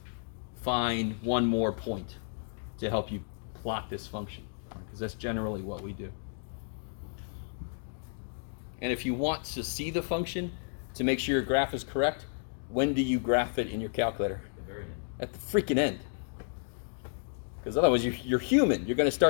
find one more point to help you plot this function. Because that's generally what we do. And if you want to see the function, to make sure your graph is correct, when do you graph it in your calculator? At the very end. At the freaking end. Because otherwise you're human. You're going to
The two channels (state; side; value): silent; right; digital silence